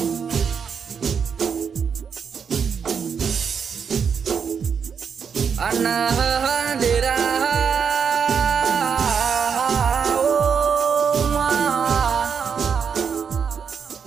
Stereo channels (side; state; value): left; quieter; 6.6 dB